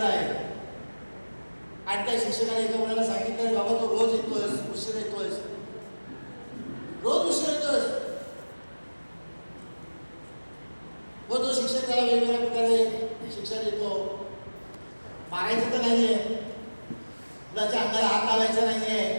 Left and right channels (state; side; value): inverted; both; correlation -1.00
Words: आहेत आणि त्या शिक्षकाने एका मुलाला सांगितलं, बाबा तो रोज येतोय, उशीर येतोय, रोज उशीर येतोय, व तो शिक्षक त्याला वेगवेगळ्या प्रकारे शिक्षण देतो. मारायचं तर नाहीये, मुलाच्या अंगाला हात लावायचा नाहीये,